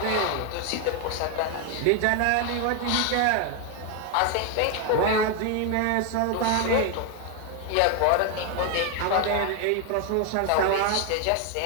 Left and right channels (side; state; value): both; different; correlation 0.01